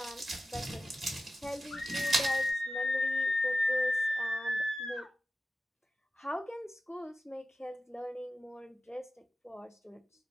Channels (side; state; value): both; normal; correlation 0.94